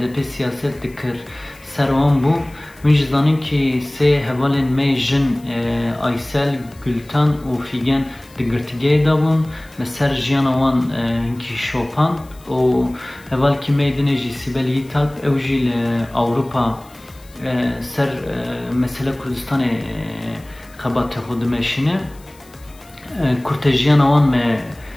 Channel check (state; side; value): noise; left; hiss, 26 dB below the sound